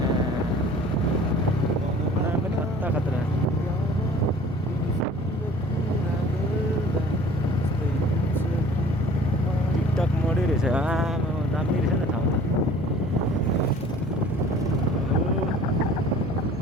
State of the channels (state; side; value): normal; both; correlation 0.49